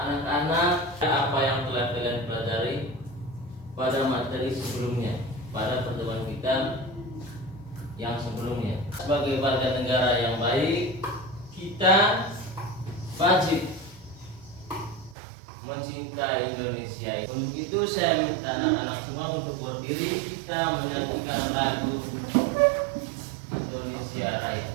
apa yang telah kalian pelajari pada materi sebelumnya, pada pertemuan kita yang sebelumnya. Sebagai warga negara yang baik, kita wajib mencintai Indonesia. Untuk itu saya minta anak-anak semua untuk berdiri, kita menyanyikan lagu Indonesia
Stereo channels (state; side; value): drops out; left; at 15.2 s